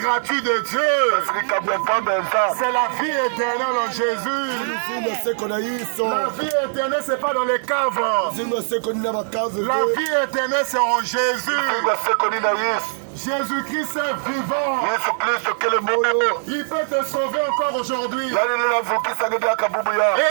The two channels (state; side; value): silent; left; 62 dB below the other